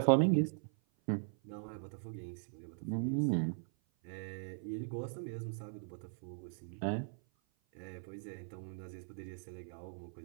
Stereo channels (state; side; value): silent; left; 51 dB below the other